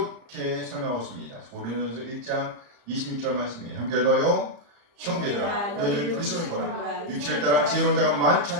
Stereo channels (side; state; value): left; late; 35 ms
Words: 설명하고 있습니다. 고린도전서 1장 26절 말씀이에요. 함께 읽어요. 형제들아 너희를 부르심을 보라. 육체를 따라 지혜로운 자가 많지